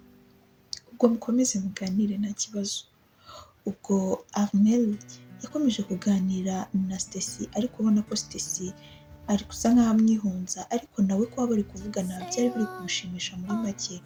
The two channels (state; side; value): identical; both; correlation 1.00